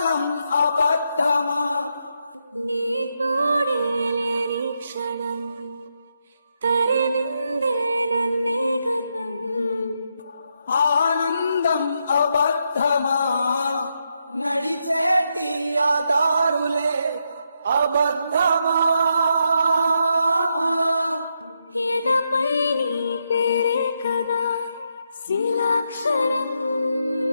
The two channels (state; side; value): inverted; both; correlation -0.81